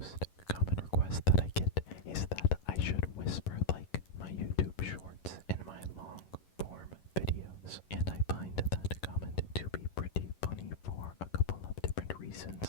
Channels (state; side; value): late; right; 11 ms